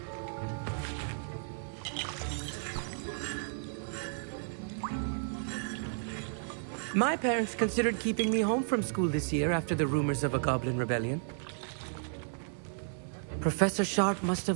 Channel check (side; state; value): left; silent; 56 dB below the other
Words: My parents considered keeping me home from school this year after the rumors of a goblin rebellion. Professor Sharp must